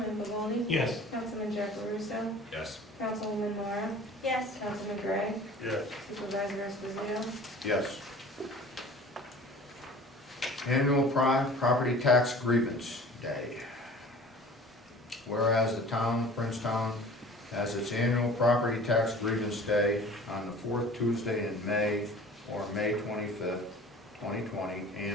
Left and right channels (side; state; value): both; normal; correlation 0.45